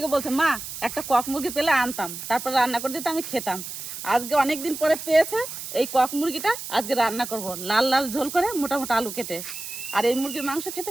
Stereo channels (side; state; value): right; noise; hiss, 9 dB below the sound